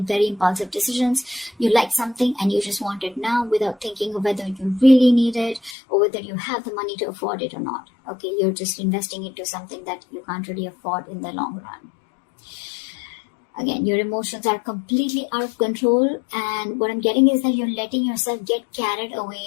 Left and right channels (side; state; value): right; drops out; at 5.8 s